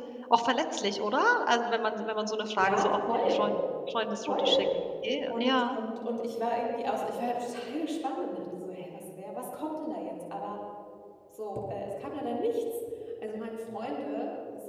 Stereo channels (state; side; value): identical; both; correlation 1.00